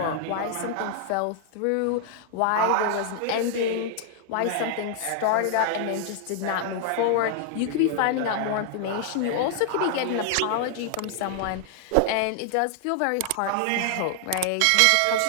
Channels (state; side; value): different; both; correlation 0.00